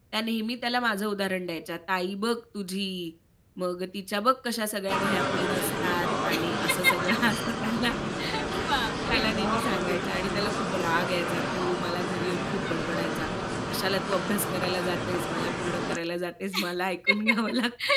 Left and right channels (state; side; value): identical; both; correlation 1.00